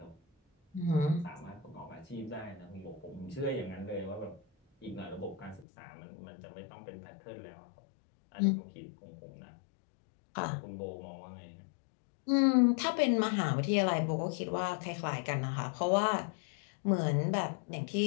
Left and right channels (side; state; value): right; drops out; at 5.7 s